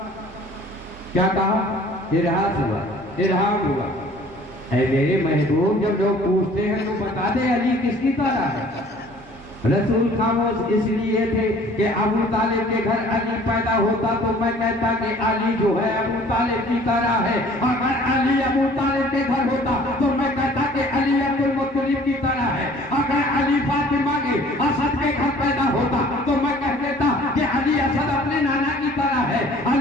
क्या कहा? इरहास हुआ, इरहाम हुआ। ऐ मेरे महबूब, जब लोग पूछते हैं तो बता दे अली किसकी तरह है। रसूल खामोश इसलिए थे कि अबू तालिब के घर अली पैदा होता तो मैं कहता कि अली जो है अबू तालिब की तरह है। अगर अली अबू तालिब के घर होता तो मैं कहता कि अली अब्दुल मुत्तलिब की तरह है। अगर अली फातिमा के असद के घर पैदा होता तो मैं कह देता कि अली असद अपने नाना की तरह है।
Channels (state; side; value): normal; both; correlation 0.52